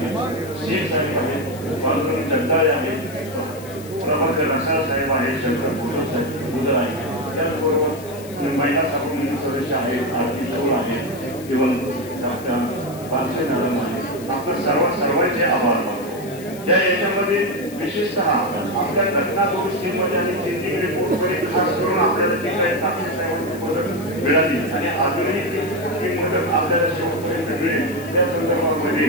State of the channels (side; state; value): left; noise; hiss, 19 dB below the sound